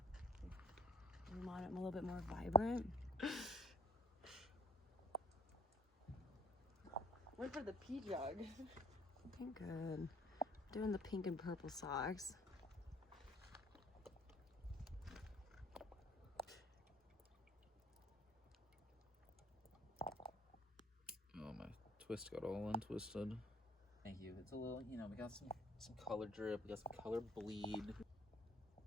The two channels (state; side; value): normal; both; correlation 0.55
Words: We want it a little bit more vibrant. Went for the pea jug. Looking good. Doing the pink and purple socks. Oh, my twist got all untwisted. Thank you. It's a little, you know, we got some color drip, we got some color bleed.